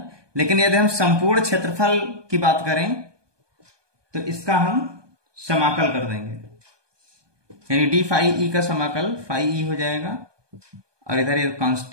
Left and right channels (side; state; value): left; late; 1.2 ms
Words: लेकिन यदि हम संपूर्ण क्षेत्रफल की बात करें तो इसका हम समाकल कर देंगे, यानी डी फाई ई का समाकल फाई ई हो जाएगा और इधर ये